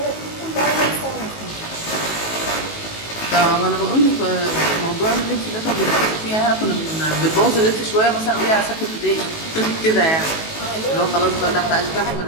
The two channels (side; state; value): right; late; 19 ms